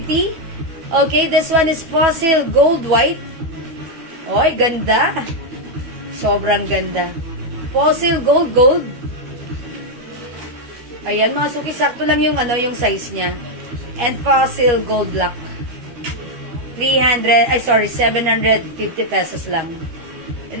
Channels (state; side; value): late; left; 12 ms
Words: Okay, this one is Fossil Gold White. Oy, ganda. Sobrang ganda. Fossil Gold Gold. Ayan, mga suki, sakto lang yung, yung size niya. And Fossil Gold Black. 750 pesos lang.